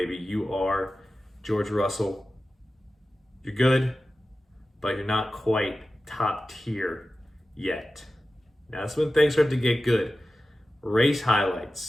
You are George Russell. You're good, but you're not quite top tier yet. Now that's when things start to get good. Race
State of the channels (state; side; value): normal; both; correlation 0.94